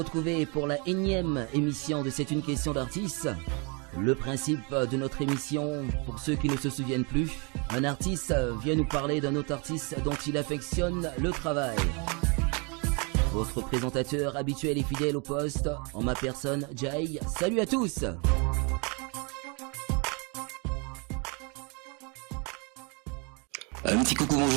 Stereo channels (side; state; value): left; quieter; 32.8 dB